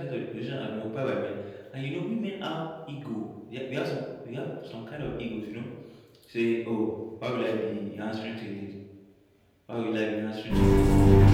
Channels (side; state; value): both; identical; correlation 1.00